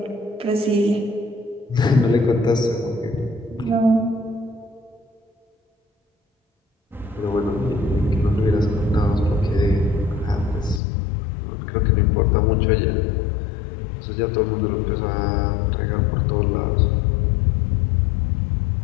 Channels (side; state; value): right; drops out; at 10.8 s